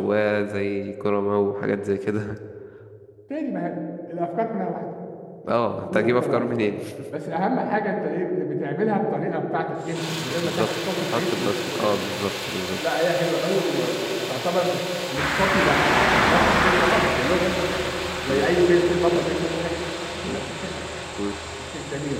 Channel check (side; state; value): both; identical; correlation 1.00